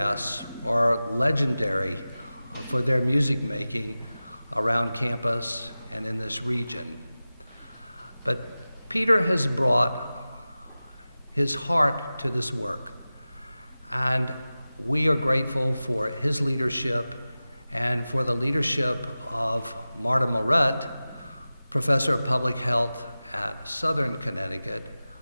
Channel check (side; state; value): both; inverted; correlation -0.96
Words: are legendary for their music making around campus and in this region. But Peter has brought his heart to this work, and we are grateful for his leadership and for the leadership of Marta Moret, professor of public health at Southern Connecticut,